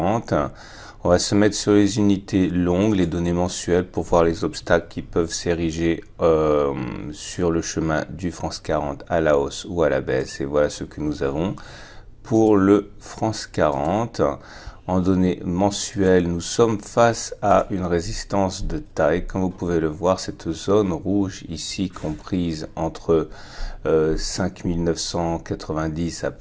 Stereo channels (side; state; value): both; identical; correlation 1.00